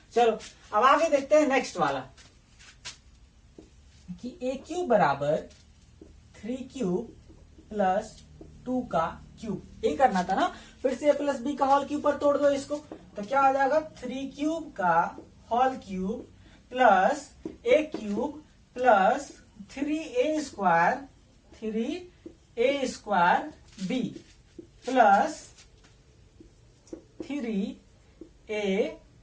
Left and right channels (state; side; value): identical; both; correlation 1.00